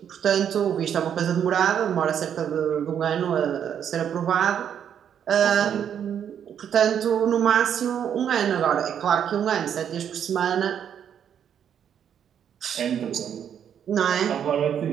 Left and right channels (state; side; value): quieter; left; 8.8 dB